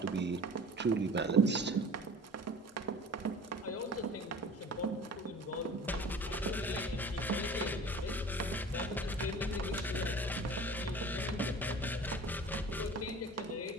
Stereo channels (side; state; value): both; normal; correlation 0.42